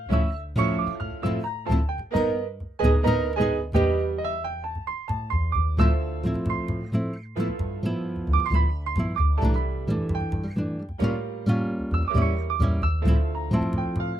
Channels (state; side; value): normal; both; correlation 0.85